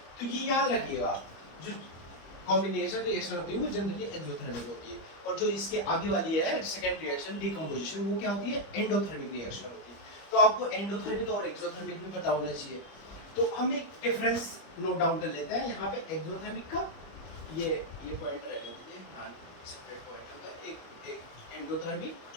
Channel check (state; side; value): late; right; 25 ms